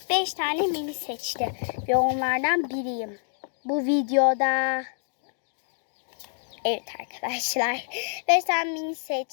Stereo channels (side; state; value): right; silent; 57 dB below the other